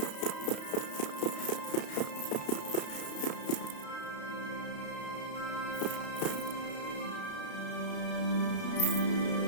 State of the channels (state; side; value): late; right; 32 ms